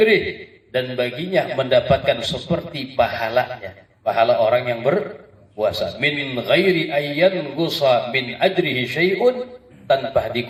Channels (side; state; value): both; identical; correlation 1.00